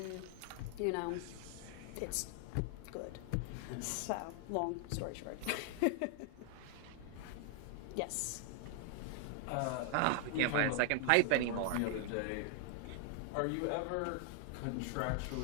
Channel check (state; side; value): different; both; correlation 0.00